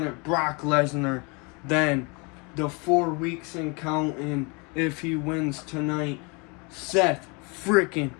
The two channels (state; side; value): quieter; right; 30.5 dB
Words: Brock Lesnar. Then, the 4 weeks and counting, if he wins tonight, Seth freaking